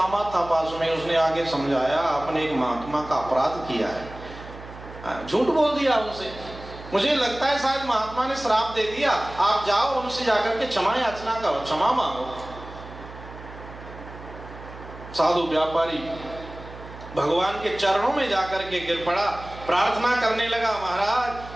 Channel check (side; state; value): right; noise; hum, 15 dB below the sound